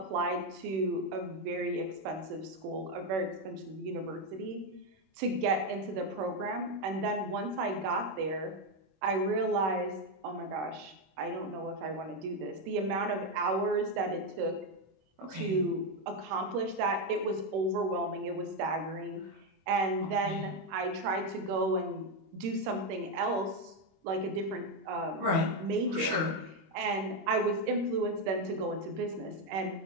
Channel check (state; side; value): late; left; 26 ms